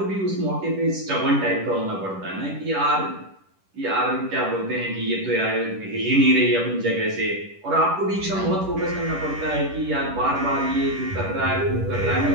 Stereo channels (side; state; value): left; late; 10 ms